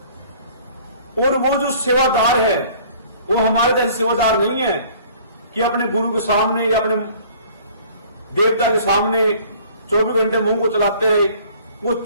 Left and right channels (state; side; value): inverted; both; correlation -0.52